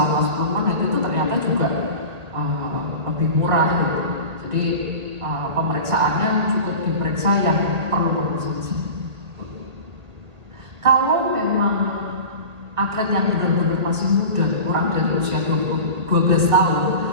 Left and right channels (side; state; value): left; late; 2.0 ms